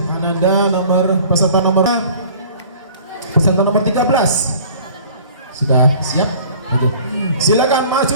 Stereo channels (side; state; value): both; inverted; correlation -0.49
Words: Ananda, peserta nomor 13. Sudah siap? Oke. Silakan